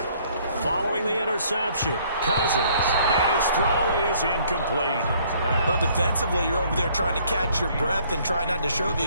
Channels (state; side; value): inverted; both; correlation -0.62